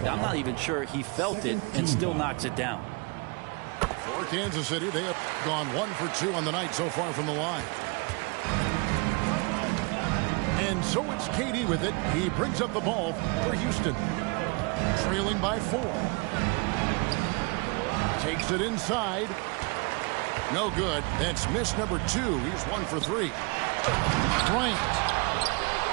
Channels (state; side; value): quieter; left; 30.3 dB